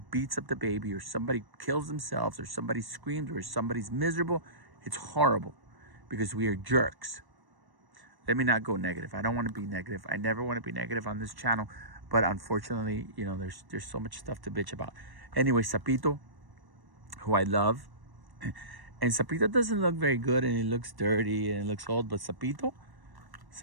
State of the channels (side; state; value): left; late; 1.1 ms